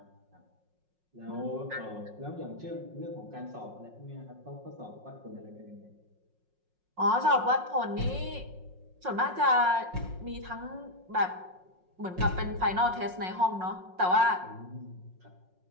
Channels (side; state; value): left; late; 5.5 ms